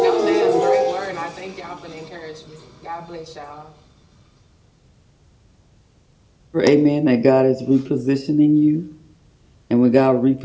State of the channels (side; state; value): both; identical; correlation 1.00